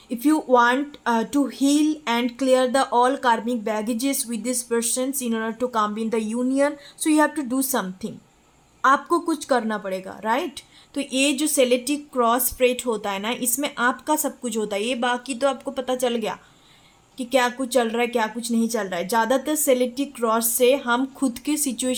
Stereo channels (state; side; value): identical; both; correlation 1.00